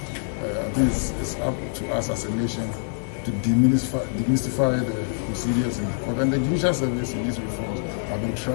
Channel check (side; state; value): right; silent; digital silence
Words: I think it's up to us as a nation to demystify the procedures in the court. And the judicial service in these reforms have been